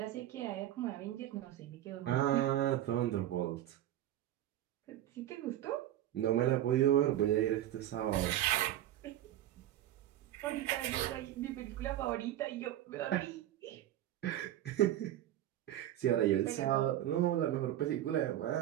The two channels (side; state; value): left; quieter; 12.9 dB